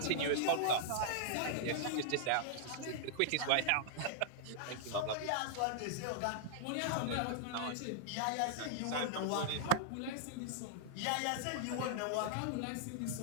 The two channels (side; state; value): both; different; correlation -0.01